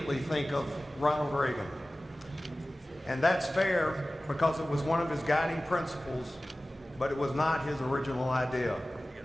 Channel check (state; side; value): normal; both; correlation 0.97